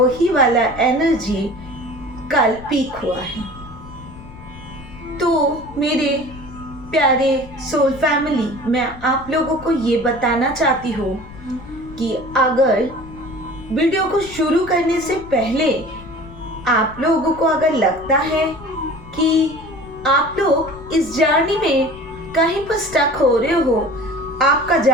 वाला एनर्जी कल पीक हुआ है। तो मेरे प्यारे सोल फैमिली, मैं आप लोगों को ये बताना चाहती हूँ कि अगर वीडियो को शुरू करने से पहले आप लोगों को अगर लगता है कि आप लोग इस जर्नी में कहीं पर स्टक हो रहे हो, आपका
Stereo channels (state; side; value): noise; left; rumble, 17 dB below the sound